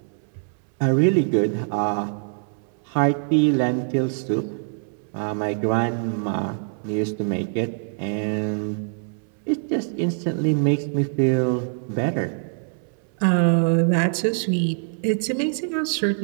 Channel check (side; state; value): left; silent; 63 dB below the other